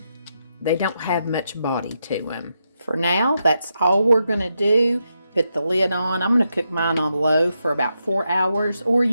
don't have much body to them. For now, that's all we're going to do. Put the lid on. I'm going to cook mine on low for about 4 hours, or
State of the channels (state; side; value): inverted; both; correlation -0.84